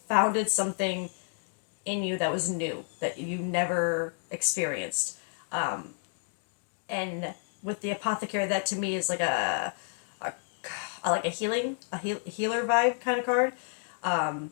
founded something in you that was new, that you never experienced. And with the apothecary, that to me is like like a healer vibe kind of card.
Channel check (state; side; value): silent; right; 58 dB below the other